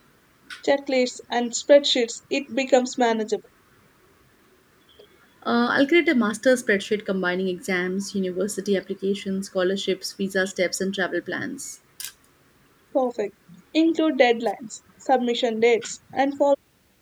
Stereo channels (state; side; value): identical; both; correlation 1.00